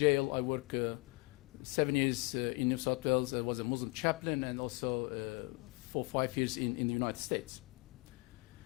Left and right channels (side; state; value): right; quieter; 27.9 dB